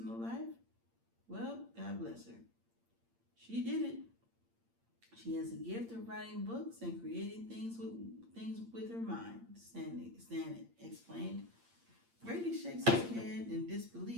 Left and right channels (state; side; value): late; left; 8.7 ms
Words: life? Well, God bless her. She did it. She has a gift of writing books and creating things with her mind, Stan explained. Brady shakes his head in